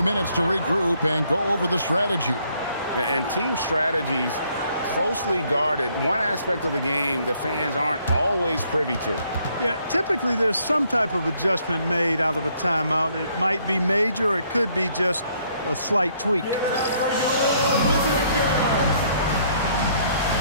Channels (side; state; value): both; inverted; correlation -0.67